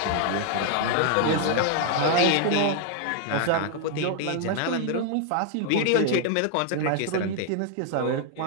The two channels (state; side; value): different; both; correlation 0.00